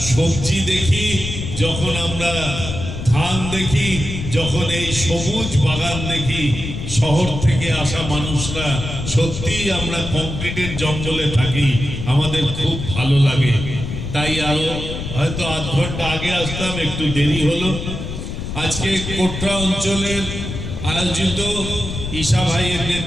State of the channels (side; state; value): left; noise; rumble, 6 dB below the sound